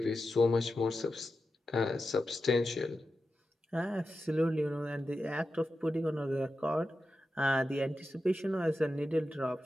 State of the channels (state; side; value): normal; both; correlation 0.91